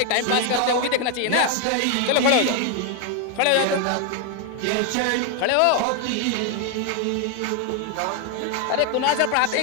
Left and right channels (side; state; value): both; different; correlation 0.01